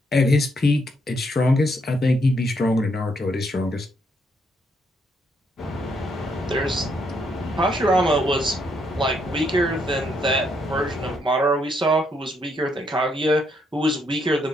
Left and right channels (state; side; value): normal; both; correlation 0.74